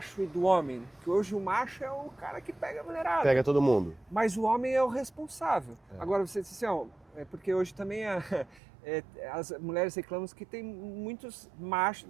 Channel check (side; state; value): left; drops out; at 8.6 s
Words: e do homem, que hoje o macho é o cara que pega a mulherada. Pega todo mundo. Mas o homem é o responsável. Agora você disse assim, porque hoje também as mulheres reclamam que tem muitos machos,